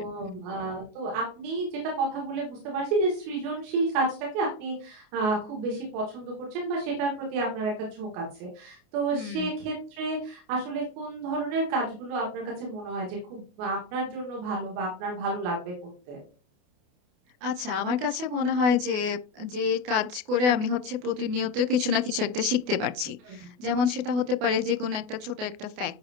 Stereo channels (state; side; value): late; left; 28 ms